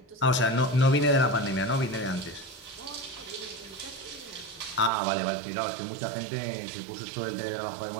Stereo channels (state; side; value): drops out; left; at 4.9 s